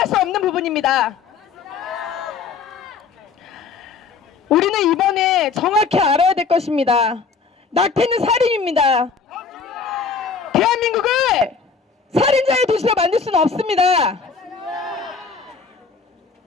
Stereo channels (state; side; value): quieter; right; 5.3 dB